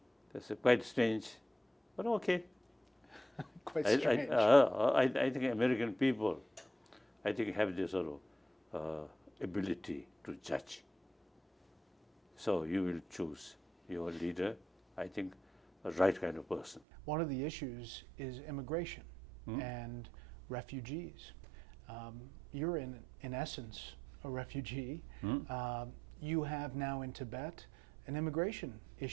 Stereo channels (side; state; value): left; drops out; at 16.8 s